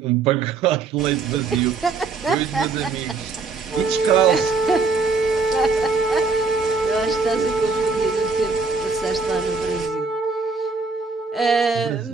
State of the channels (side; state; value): left; quieter; 4.4 dB